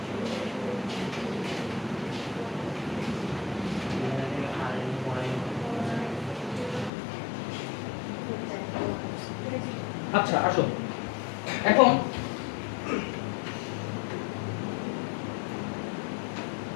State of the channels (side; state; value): right; drops out; at 6.9 s